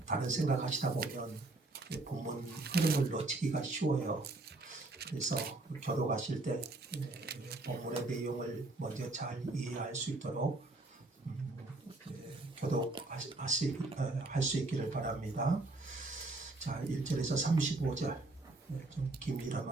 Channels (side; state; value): left; quieter; 3.1 dB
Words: 다른 생각하시다 보면 본문 흐름을 놓치기가 쉬워요. 그래서 교독하실 때 본문의 내용을 먼저 잘 이해할 수 있도록 교독할 수 있기를 바랍니다. 자, 1절에서 35절 좀